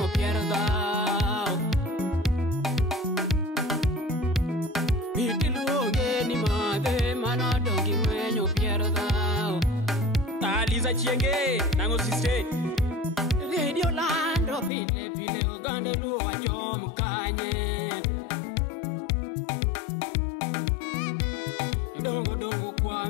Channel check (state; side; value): drops out; right; at 14.7 s